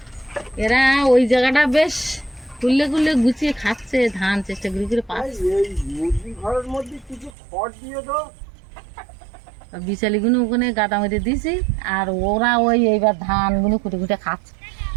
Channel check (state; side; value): drops out; left; at 7.3 s